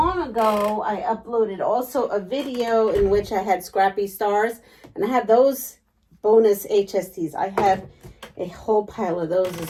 ago, I uploaded also a video in which I had scrappy stars. And I have those bonus HSTs. I have a whole pile of those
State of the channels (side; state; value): both; identical; correlation 1.00